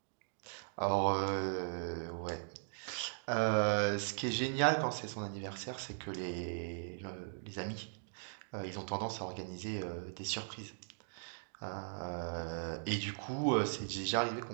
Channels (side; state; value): left; silent; digital silence